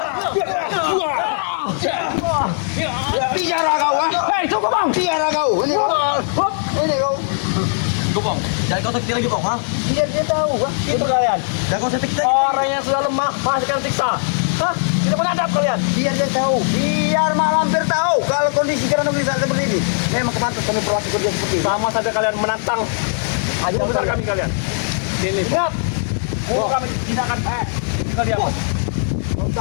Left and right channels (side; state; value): right; silent; digital silence